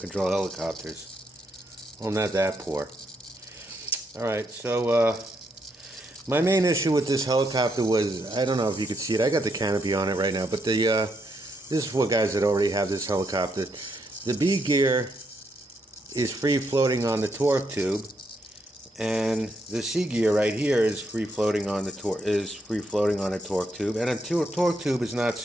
helicopters? Well, I'm not that poor. Alright, so my main issue with this helicopter was, I don't know if you could see it, I got the canopy on it right now, but this is for guys that already have this helicopter. The B gear is free floating on the torque tube, and the C gear right here is free floating on the torque tube, and a torque tube is not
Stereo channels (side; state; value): both; normal; correlation 0.78